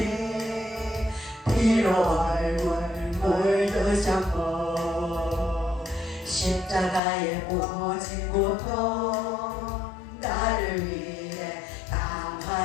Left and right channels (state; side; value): drops out; right; at 7.0 s